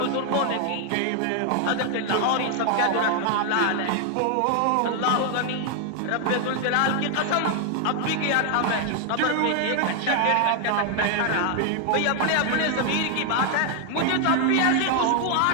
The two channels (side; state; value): both; different; correlation 0.00